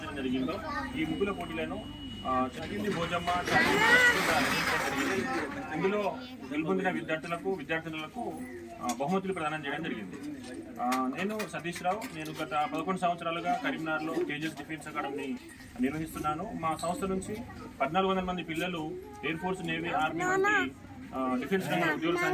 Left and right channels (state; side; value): identical; both; correlation 1.00